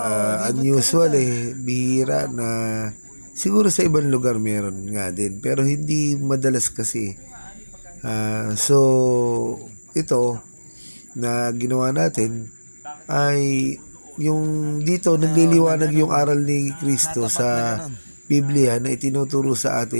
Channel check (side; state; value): both; inverted; correlation -1.00